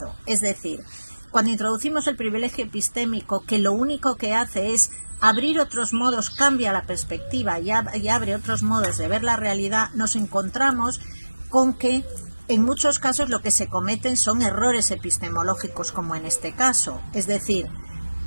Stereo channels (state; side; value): inverted; both; correlation -1.00